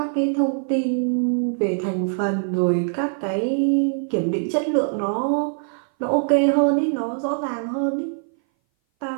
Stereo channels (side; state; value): left; silent; 59 dB below the other